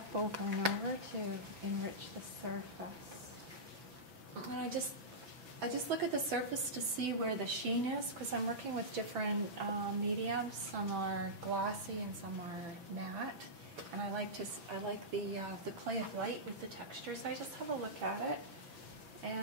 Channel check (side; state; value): left; late; 6.0 ms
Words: over and over to enrich the surface. And I just look at the surface to see where the sheen is, because I'm working with different mediums. Some are glossy and some are matte. And I like the play of light with the texture. So I just have a look at it,